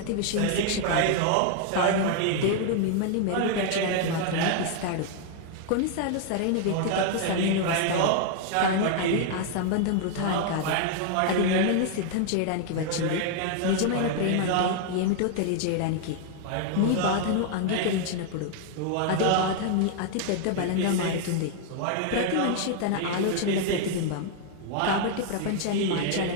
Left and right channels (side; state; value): both; different; correlation 0.00